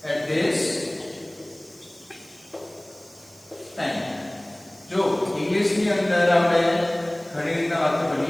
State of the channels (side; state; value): right; noise; hiss, 25 dB below the sound